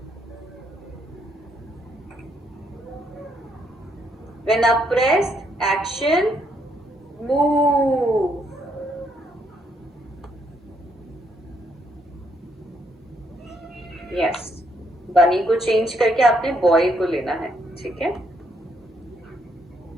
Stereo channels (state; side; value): normal; both; correlation 0.73